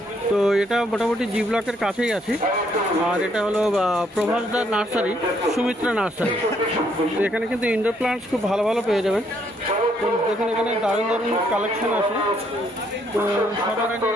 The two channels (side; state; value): both; normal; correlation 0.70